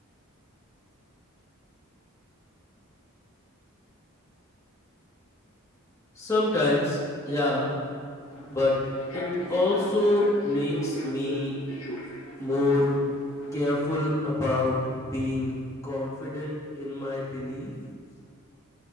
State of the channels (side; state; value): both; normal; correlation 0.55